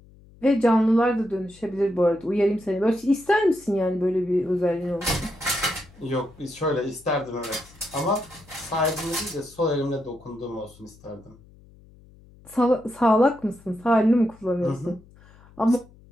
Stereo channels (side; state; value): left; noise; hum, 25 dB below the sound